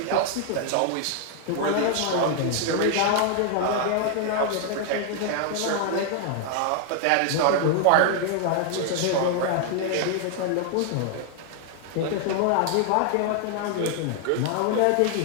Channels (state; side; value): different; both; correlation 0.00